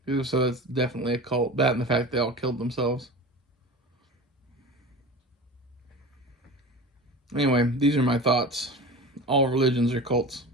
So that's definitely a cult. That and the fact they all killed themselves. Anyway, these are my thoughts. All religions are cults.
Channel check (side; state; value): both; normal; correlation 0.33